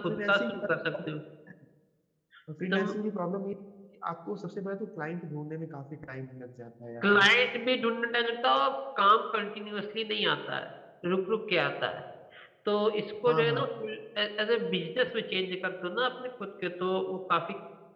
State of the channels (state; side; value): identical; both; correlation 1.00